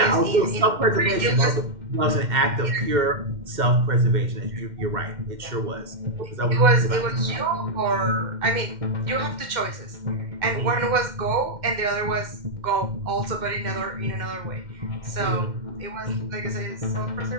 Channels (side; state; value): left; late; 2.1 ms